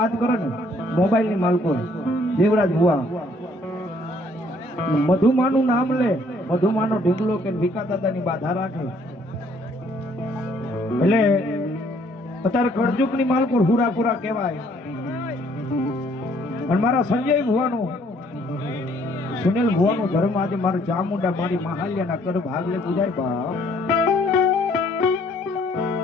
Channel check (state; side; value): normal; both; correlation 0.63